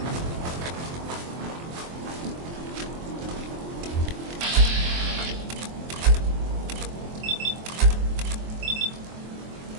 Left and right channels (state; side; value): late; left; 23 ms